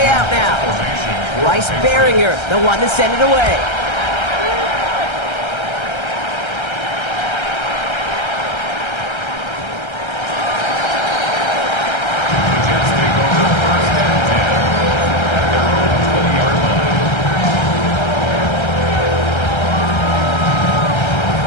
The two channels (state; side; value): late; right; 1.3 ms